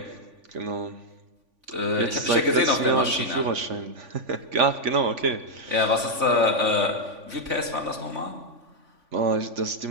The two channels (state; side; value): late; left; 3.5 ms